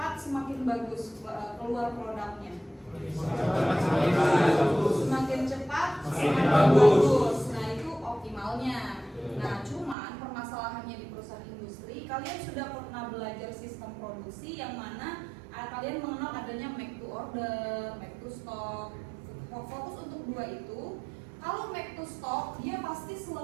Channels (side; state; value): left; drops out; at 10.0 s